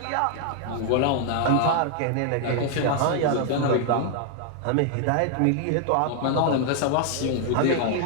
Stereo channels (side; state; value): both; different; correlation 0.00